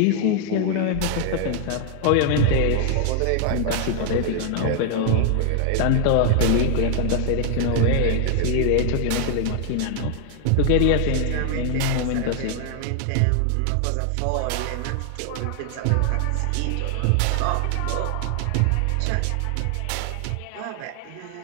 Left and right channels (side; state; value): both; different; correlation 0.00